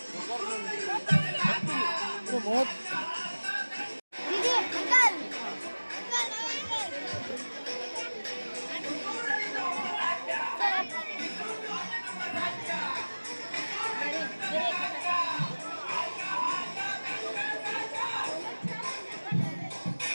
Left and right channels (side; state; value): both; inverted; correlation -1.00